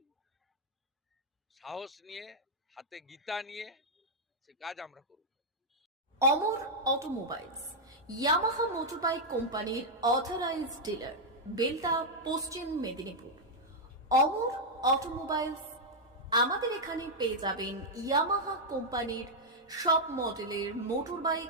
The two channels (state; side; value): normal; both; correlation -0.03